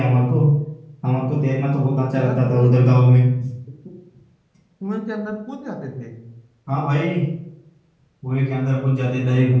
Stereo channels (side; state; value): both; identical; correlation 1.00